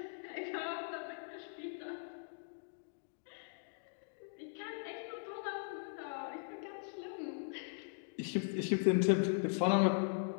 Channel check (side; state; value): right; silent; digital silence